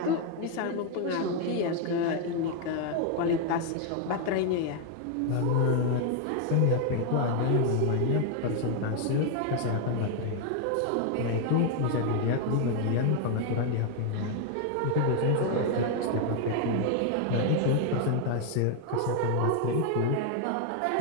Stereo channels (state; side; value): different; both; correlation 0.00